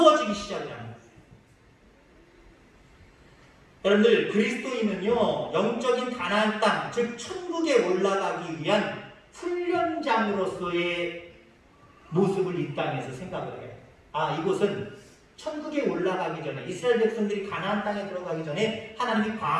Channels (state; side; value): identical; both; correlation 1.00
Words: 시작하는 거예요. 여러분들, 그리스도인은요 영적인 가나안 땅, 즉 천국에 올라가기 위한 훈련장으로서의 모습을 이 땅에서 생각을 해요. 아, 이곳은 천국에 올라가기 전에, 이스라엘 백성들이 가나안 땅에 들어가기 전에 하나님이